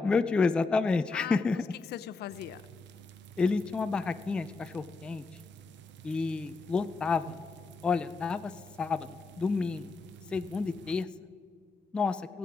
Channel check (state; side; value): quieter; right; 4.1 dB